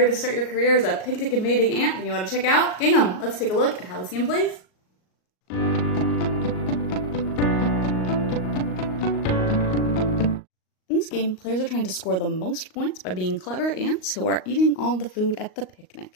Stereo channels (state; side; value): late; right; 38 ms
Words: to start your career as a picnic invading ant, then you want to check out Gingham. Let's take a look at how this game plays. In this game, players are trying to score the most points by being clever ants who are eating all the food at the